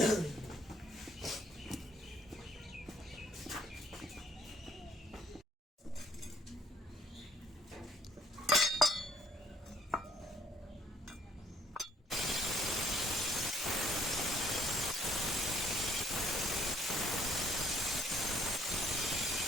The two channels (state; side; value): normal; both; correlation 0.63